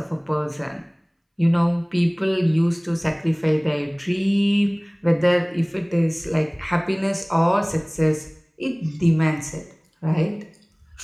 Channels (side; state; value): both; identical; correlation 1.00